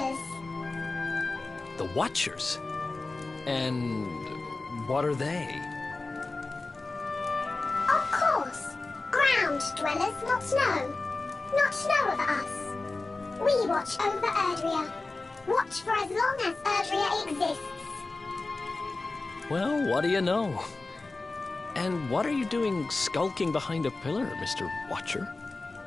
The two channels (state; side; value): quieter; right; 3.4 dB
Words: The Watchers? And what are they? Of course. Ground dwellers not know. Not know of us. We watch over Erdrea. Watch for as long as Erdrea exists. Well, what do you know? And what are you doing skulking behind a pillar, Mr. Watcher?